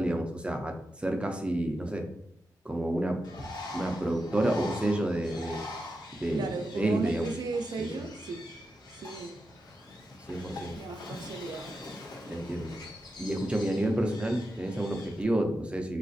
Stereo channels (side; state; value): both; normal; correlation 0.88